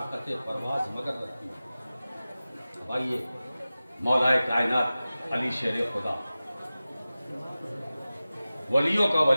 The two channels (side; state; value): both; inverted; correlation -0.96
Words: پرواز مگر رکھتی ہے۔ بھائیے مولا کائنات علی شیر خدا، ولیوں کا